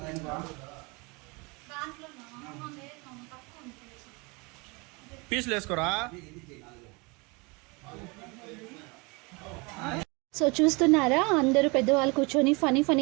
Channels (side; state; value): left; quieter; 28.1 dB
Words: దాన్ని పీసులు వేసుకోరా. సో చూస్తున్నారా, అందరూ పెద్దవాళ్ళు కూర్చొని